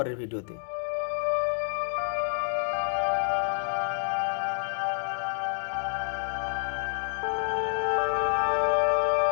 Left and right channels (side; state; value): right; silent; digital silence